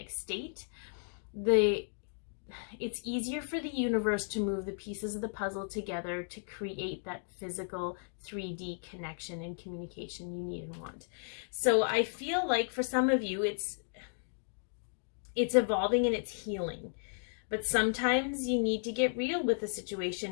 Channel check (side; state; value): right; silent; digital silence